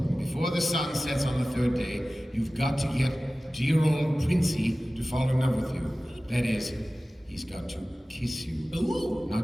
Before the sun sets on the 3rd day, you've got to get dear old Princey to fall in love with you. That is, he's got to kiss you. Ooh.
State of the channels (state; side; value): normal; both; correlation 0.97